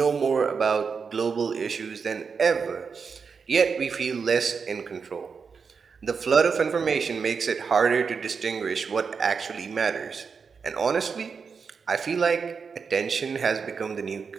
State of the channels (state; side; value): quieter; left; 5.6 dB